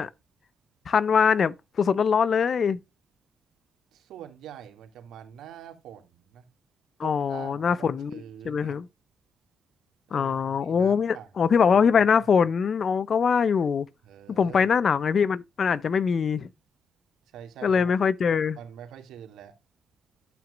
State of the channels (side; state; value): right; quieter; 6.0 dB